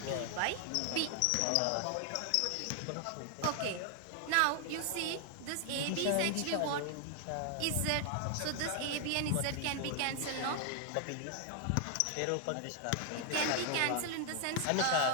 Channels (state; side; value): different; both; correlation 0.00